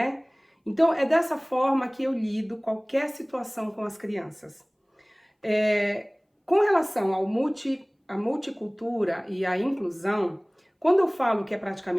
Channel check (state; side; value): identical; both; correlation 1.00